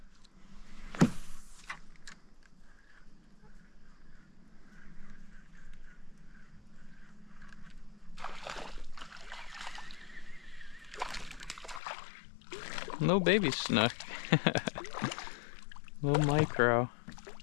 No baby snook. Little micro.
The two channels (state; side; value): drops out; right; at 11.8 s